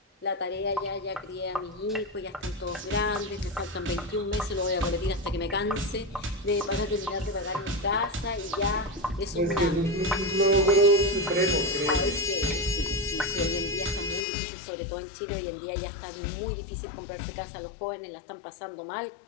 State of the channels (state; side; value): drops out; right; at 14.2 s